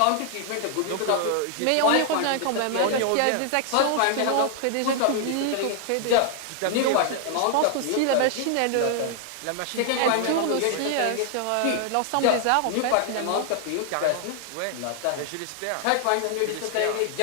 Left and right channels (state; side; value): different; both; correlation 0.00